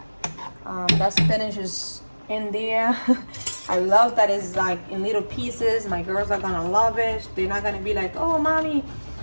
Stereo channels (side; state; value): both; inverted; correlation -1.00